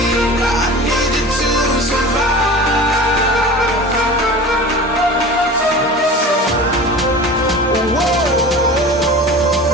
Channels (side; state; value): both; normal; correlation 0.36